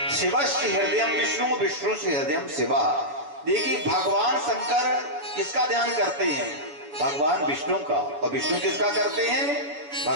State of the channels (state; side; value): late; left; 6.9 ms